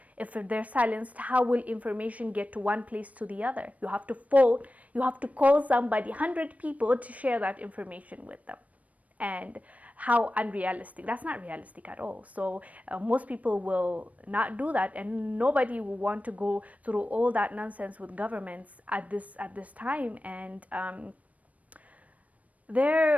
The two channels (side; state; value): left; late; 0.069 ms